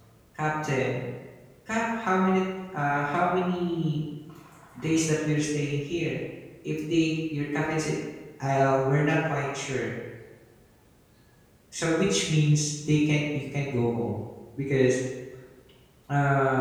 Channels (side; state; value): both; identical; correlation 1.00